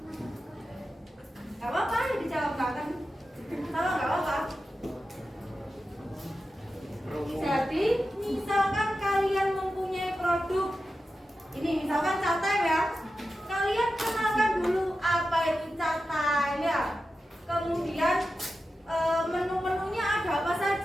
Gak apa-apa, dijawab kan? Kalau gak apa-apa. Jadi, misalkan kalian mempunyai produk, ini misalkan chat time ya. Kalian kenalkan dulu apa itu chat time ya. Kemudian menu-menunya ada apa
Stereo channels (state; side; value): normal; both; correlation 0.92